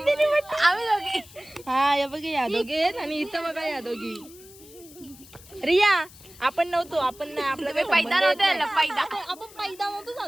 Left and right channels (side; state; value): left; noise; hiss, 21 dB below the sound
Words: पाटील. हा या बघा या दोघे आणि इथं बघा या दोघी. रिया आपण नव्हतो. आपण नाही आपला काही संबंध येत नाही. आपण पैदा नव्हतो